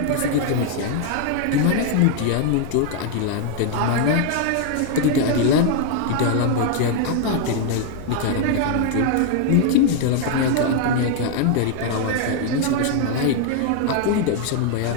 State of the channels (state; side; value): different; both; correlation 0.00